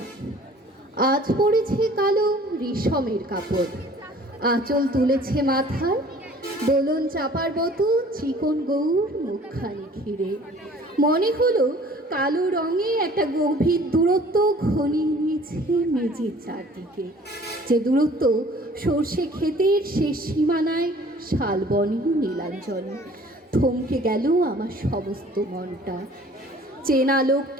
আজ পড়েছে কালো রেশমের কাপড়, আঁচল তুলেছে মাথায়, দোলন চাপার মতো চিকন গৌর মুখখানি ঘিরে। মনে হলো কালো রঙে একটা গভীর দূরত্ব ঘনিয়ে নিয়েছে মেঝের চারদিকে, যে দূরত্ব সর্ষে ক্ষেতের শেষ সীমানায় শালবনে নীলাঞ্জনে। থমকে গেল আমার সমস্ত মনটা। চেনা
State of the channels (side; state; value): both; normal; correlation 0.51